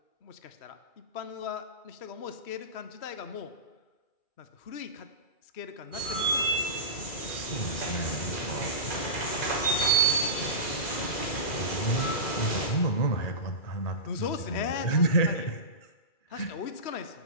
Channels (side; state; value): right; late; 2.3 ms